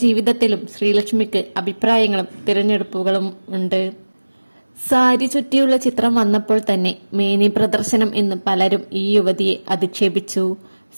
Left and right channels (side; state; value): both; inverted; correlation -1.00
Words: ജീവിതത്തിലും ശ്രീലക്ഷ്മിക്ക് അഭിപ്രായങ്ങളും തിരഞ്ഞെടുപ്പുകളും ഉണ്ട്. സാരി ചുറ്റിയുള്ള ചിത്രം വന്നപ്പോൾ തന്നെ മേനി പ്രദർശനം എന്ന് പലരും ഈ യുവതിയെ അധിക്ഷേപിച്ചു.